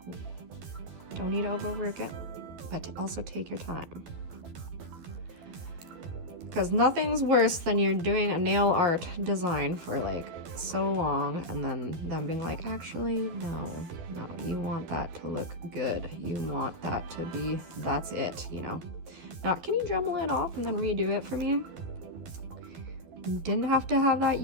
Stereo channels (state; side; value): late; left; 12 ms